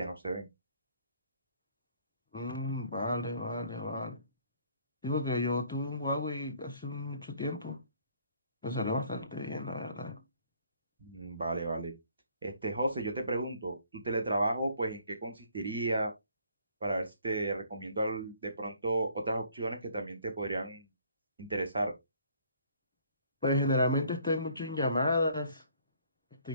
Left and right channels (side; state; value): both; inverted; correlation -0.60